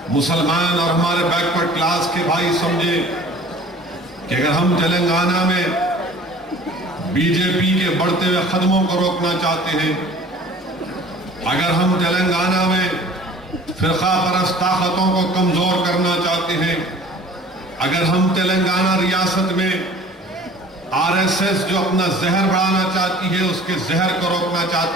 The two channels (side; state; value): both; normal; correlation 0.47